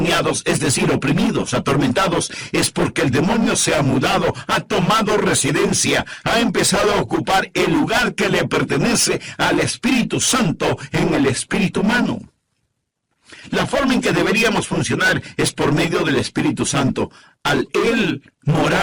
es decir, oprimidos, atormentados, es porque el demonio se ha mudado, ha tomado residencia, ha empezado a ocupar el lugar que le pertenece al Espíritu Santo en el espíritu humano. La forma en que deberíamos funcionar es por medio del Espíritu Santo, al Él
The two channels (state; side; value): identical; both; correlation 1.00